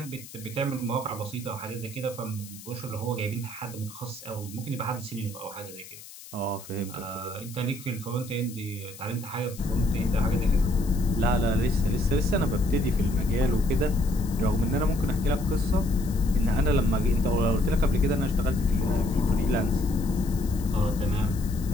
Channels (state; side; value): noise; left; hiss, 17 dB below the sound